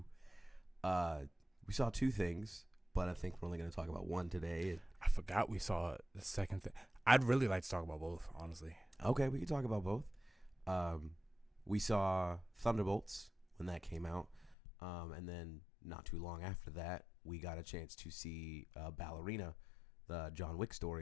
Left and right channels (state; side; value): drops out; right; at 14.6 s